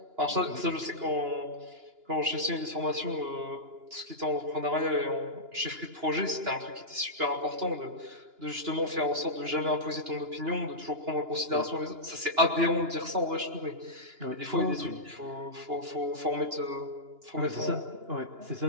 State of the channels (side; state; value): left; late; 2.9 ms